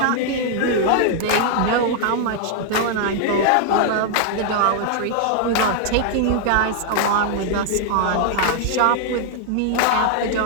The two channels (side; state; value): both; different; correlation 0.00